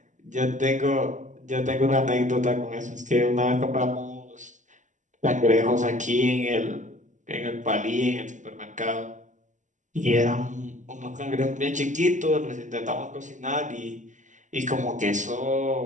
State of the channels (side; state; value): left; late; 0.36 ms